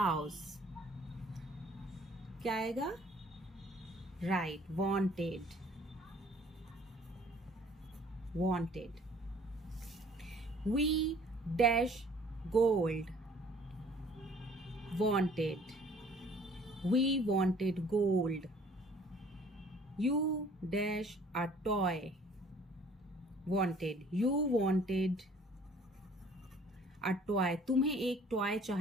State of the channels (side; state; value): both; normal; correlation 0.55